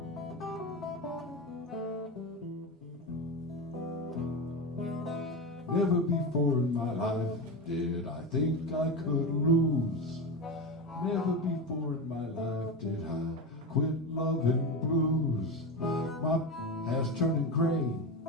Never before in my life did I think I could lose. Never before in my life did I quit loving blues. My hair's turning gray.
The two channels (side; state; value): both; normal; correlation 0.19